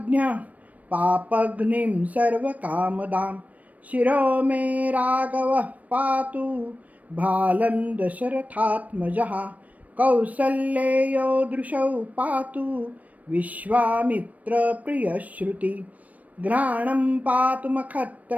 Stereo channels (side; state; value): left; late; 0.071 ms